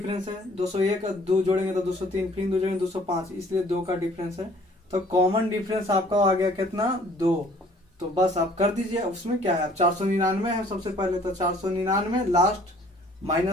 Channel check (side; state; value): both; normal; correlation 0.56